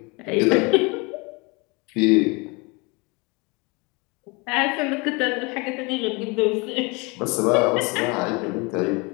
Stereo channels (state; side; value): quieter; right; 28.2 dB